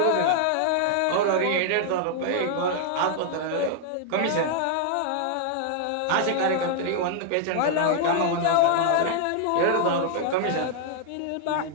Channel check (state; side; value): different; both; correlation -0.01